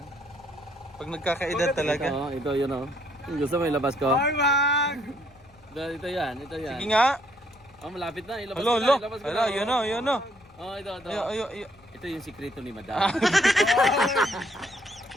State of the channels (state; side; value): noise; left; rumble, 28 dB below the sound